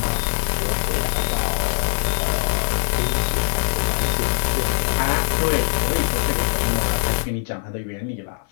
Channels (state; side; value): silent; right; 57 dB below the other